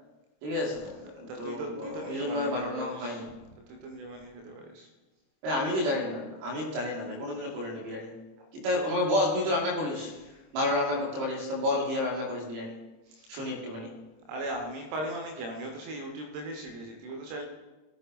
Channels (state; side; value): late; left; 26 ms